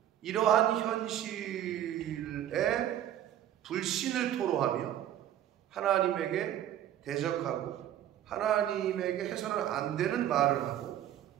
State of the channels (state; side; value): quieter; left; 11.5 dB